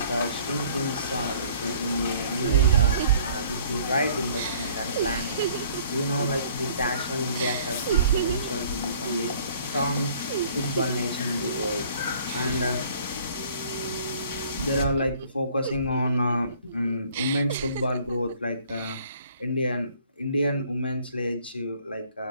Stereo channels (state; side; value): inverted; both; correlation -0.56